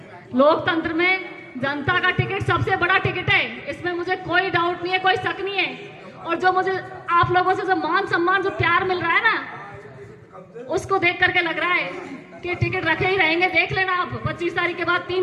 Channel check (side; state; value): both; identical; correlation 1.00